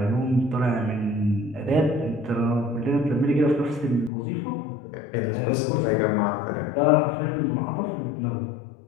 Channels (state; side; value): drops out; right; at 4.1 s